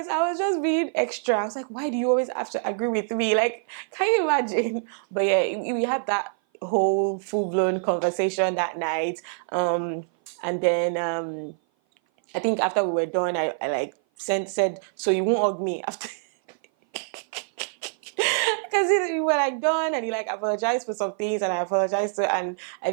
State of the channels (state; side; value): silent; left; 56 dB below the other